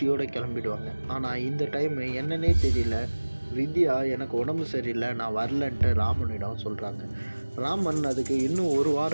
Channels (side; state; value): both; inverted; correlation -1.00